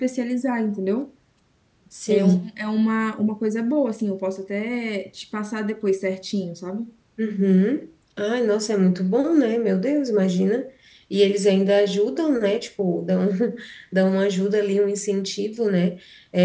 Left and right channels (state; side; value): identical; both; correlation 1.00